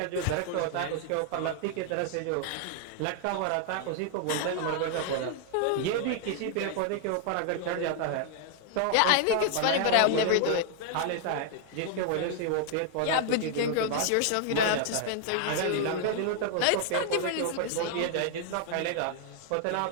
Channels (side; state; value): both; different; correlation 0.00